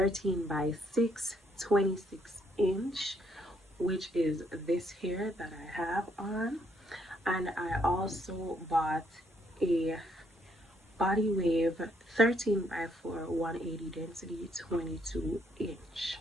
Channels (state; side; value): normal; both; correlation 0.71